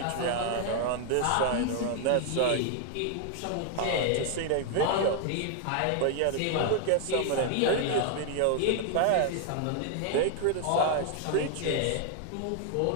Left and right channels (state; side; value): different; both; correlation 0.00